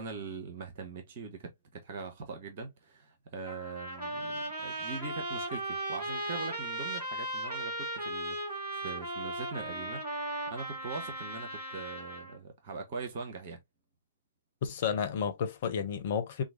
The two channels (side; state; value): both; inverted; correlation -0.47